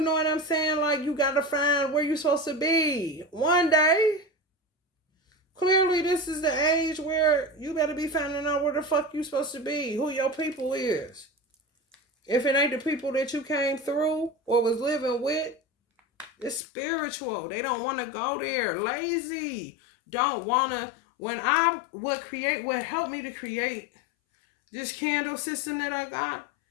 what I'm saying? Like, you got to find where you're supposed to be. One day, clearly this is the age where you better be finding out where the fuck you supposed to be. Who your people is. If it ain't the people that you came through or was living with, it's spiritual. They don't want to go there. Lazy. Don't want to. What helped me to create this candle system that I got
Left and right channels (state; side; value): drops out; right; at 16.6 s